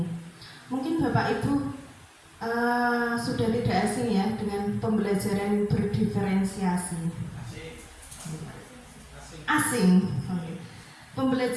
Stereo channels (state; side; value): identical; both; correlation 1.00